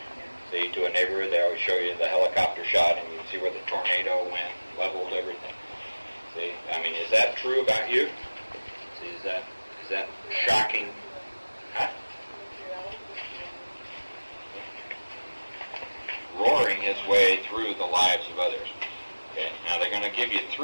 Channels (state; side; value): inverted; both; correlation -1.00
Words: See, to a neighborhood, they always show you the helicopter shot, and you can see where the tornado went, leveled everything. See, I mean, is that true about you? See, is that shocking? Huh? Roaring his way through the lives of others. Okay, now they're going to give you